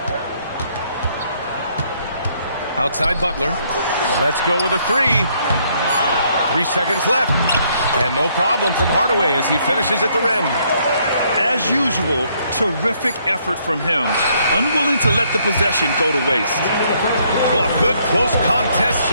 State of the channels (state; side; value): inverted; both; correlation -0.69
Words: Outside Butler. Let's go with a three. 3 seconds left. And no problem from Hardaway as he finishes at the rim. As usual, terrific effort from him. Unwilling to let the possession go to waste. Well, a good close contest